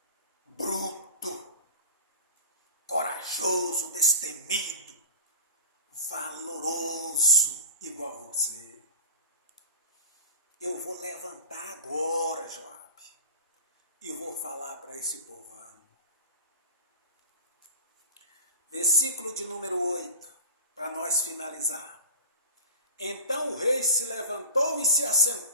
bruto, corajoso, destemido, valoroso, igual você? Eu vou levantar agora, Joabe, e vou falar para esse povão. Versículo de número 8, para nós finalizar. Então o rei se levantou e se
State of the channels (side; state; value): both; inverted; correlation -0.31